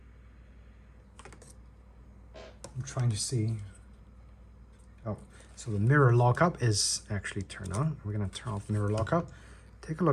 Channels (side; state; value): both; identical; correlation 1.00